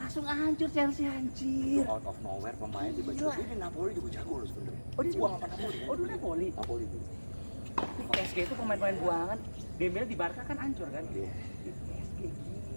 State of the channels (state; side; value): inverted; both; correlation -1.00